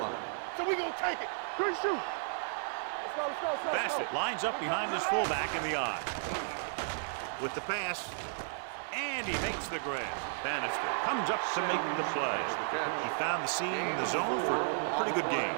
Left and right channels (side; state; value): left; silent; digital silence